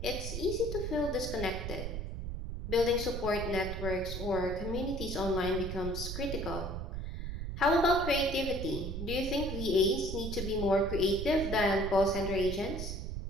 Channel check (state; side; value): noise; right; rumble, 5 dB below the sound